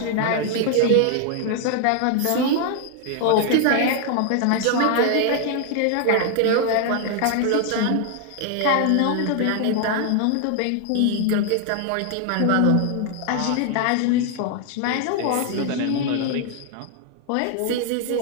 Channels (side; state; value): both; different; correlation 0.00